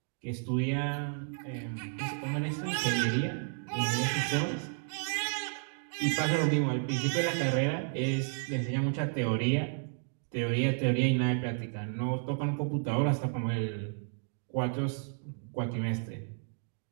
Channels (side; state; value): left; silent; 56 dB below the other